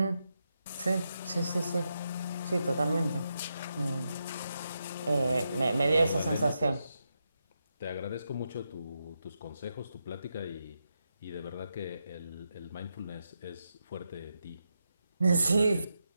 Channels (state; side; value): inverted; both; correlation -0.85